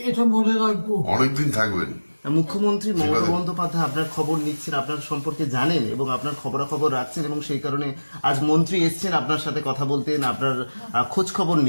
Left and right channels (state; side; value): inverted; both; correlation -1.00